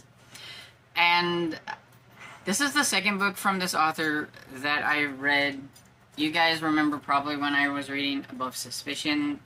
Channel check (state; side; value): identical; both; correlation 1.00